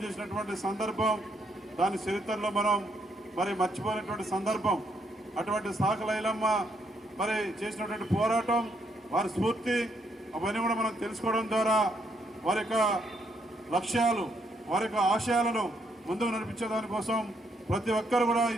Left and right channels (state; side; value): normal; both; correlation 0.74